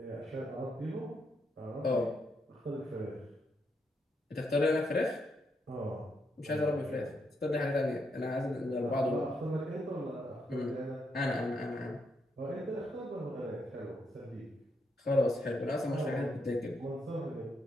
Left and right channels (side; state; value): both; normal; correlation 0.78